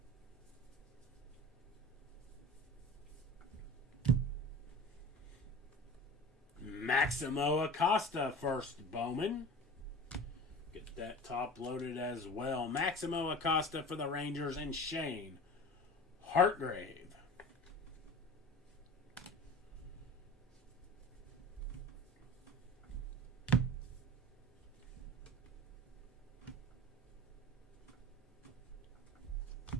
Maximo Acosta first Bowman. Get that top loaded as well. Maximo Acosta for the Rangers and Shane Hartgrave.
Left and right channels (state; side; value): normal; both; correlation 0.36